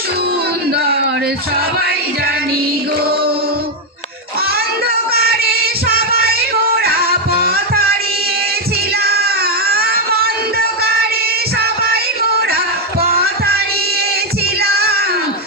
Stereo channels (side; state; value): both; normal; correlation 0.03